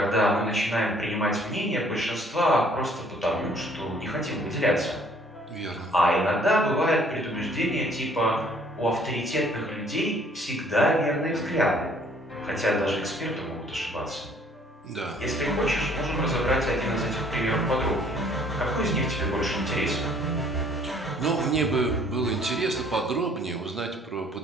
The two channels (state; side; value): normal; both; correlation 0.59